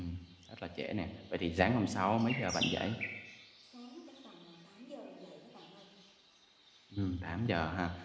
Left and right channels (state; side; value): identical; both; correlation 1.00